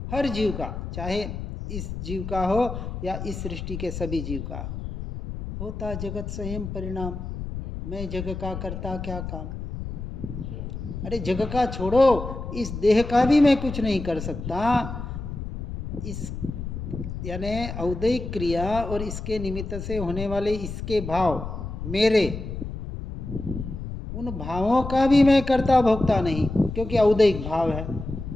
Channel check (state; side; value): noise; left; rumble, 7 dB below the sound